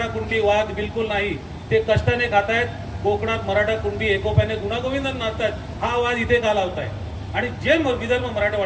कुणबी वाद बिलकुल नाही. ते कष्टाने खातायत. कोकणात मराठा कुणबी एकोप्याने गुणागोविंदाने नाचतायत. हा वाद इथे का लावताय. आणि जे विदर्भ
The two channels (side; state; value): both; identical; correlation 1.00